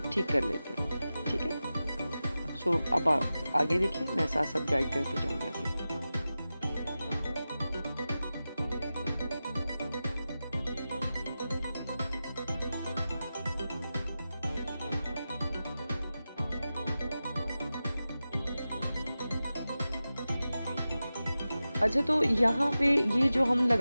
ठीक कर लेते हैं, ठीक है। सो अब आगे देखिए, मैं साथ साथ गाइड करते जाऊँगी आपको। अच्छा, तो यहाँ पे ये जो हम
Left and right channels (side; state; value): both; inverted; correlation -0.94